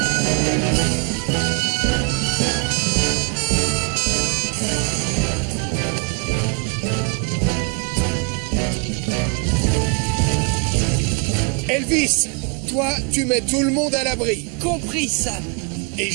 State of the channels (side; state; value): left; quieter; 35.4 dB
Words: Elvis, toi, tu mets tout le monde à l'abri. Compris, Sam. Et